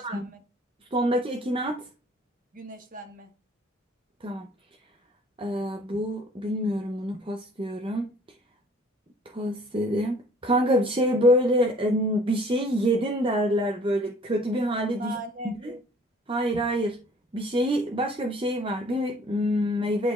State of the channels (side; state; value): both; normal; correlation 0.54